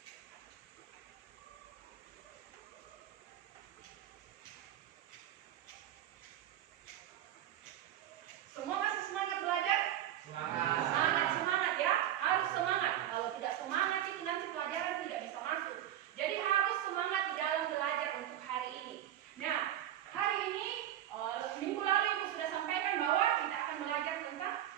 Semua masih semangat belajar? Semangat. Sangat semangat ya, harus semangat. Kalau tidak semangat itu nanti pelajaran tidak bisa masuk. Jadi harus semangat di dalam belajar untuk hari ini. Nah, hari ini minggu lalu Ibu sudah sampaikan bahwa kita akan belajar tentang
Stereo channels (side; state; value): left; quieter; 11.8 dB